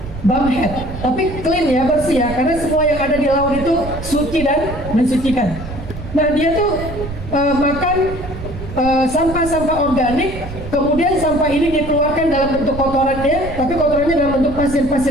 bumhead. Tapi clean ya, bersih ya, karena semua yang ada di laut itu suci dan mensucikan. Nah, dia tuh makan sampah-sampah organik, kemudian sampah ini dikeluarkan dalam bentuk kotorannya, tapi kotorannya dalam bentuk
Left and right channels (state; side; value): noise; right; rumble, 10 dB below the sound